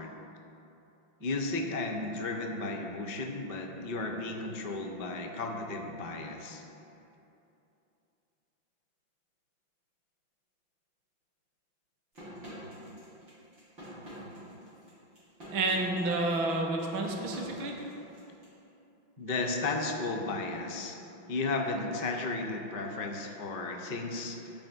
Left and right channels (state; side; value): late; left; 5.8 ms